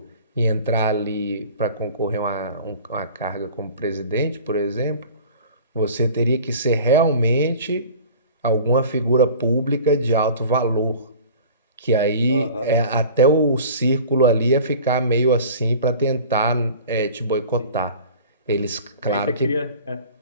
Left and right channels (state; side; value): inverted; both; correlation -0.43